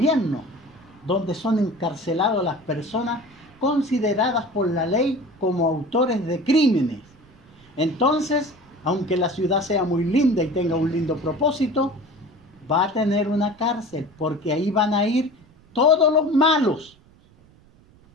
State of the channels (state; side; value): noise; right; rumble, 28 dB below the sound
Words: donde son encarceladas las personas consideradas por la ley como autores de crímenes. Entonces, aunque la ciudad sea muy linda y tenga un lindo propósito, va a tener una cárcel, porque ahí van a ir todos los malos.